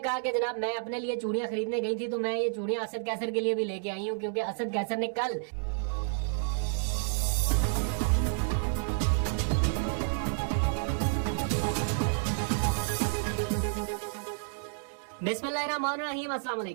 कि जनाब मैं अपने लिए चूड़ियां खरीदने गई थी तो मैं ये चूड़ियां असद कैसर के लिए भी लेके आई हूँ, क्योंकि असद कैसर ने कल बिस्मिल्लाहिर्रहमानिर्रहीम, अस्सलाम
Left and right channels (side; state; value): left; silent; digital silence